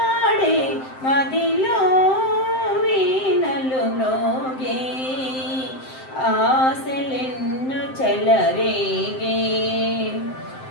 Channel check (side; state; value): right; late; 7.7 ms